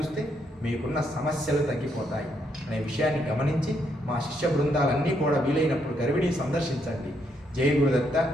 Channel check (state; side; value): normal; both; correlation 0.75